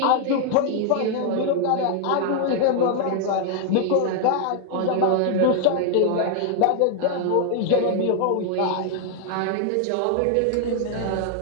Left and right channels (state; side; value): different; both; correlation 0.00